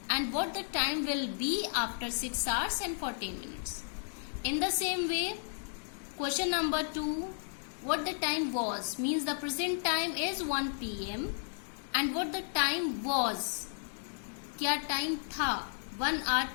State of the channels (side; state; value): right; silent; digital silence